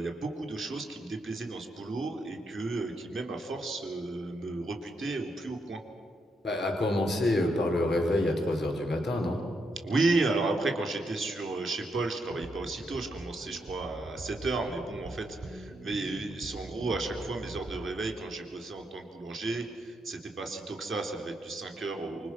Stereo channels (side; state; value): both; normal; correlation 0.79